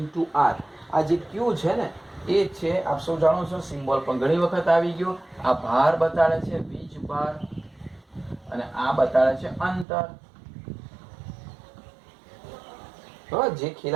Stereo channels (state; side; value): drops out; left; at 9.9 s